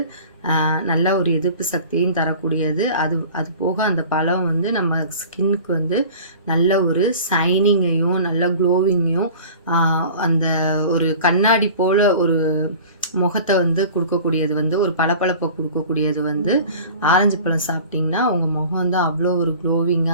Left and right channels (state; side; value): inverted; both; correlation -0.42